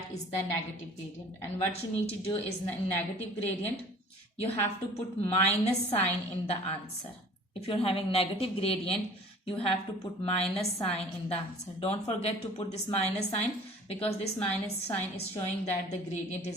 is the negative gradient. And what you need to do is in negative gradient, you have to put minus sign in the answer. If you're having negative gradient, you have to put minus sign in the answer. Don't forget to put this minus sign, because this minus sign is showing that the gradient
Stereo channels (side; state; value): both; normal; correlation 0.47